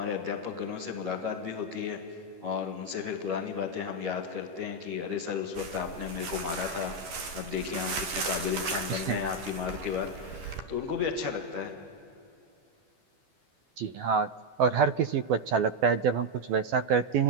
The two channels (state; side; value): late; left; 12 ms